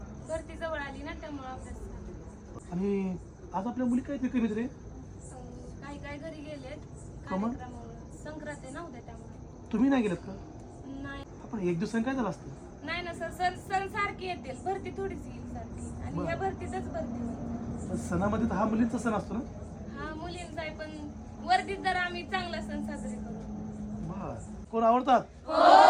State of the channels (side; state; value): both; identical; correlation 1.00